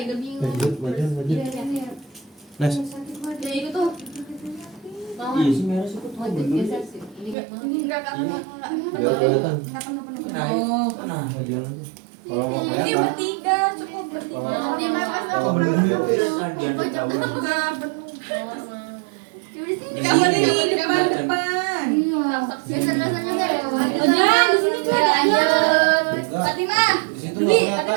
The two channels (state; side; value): drops out; left; at 7.4 s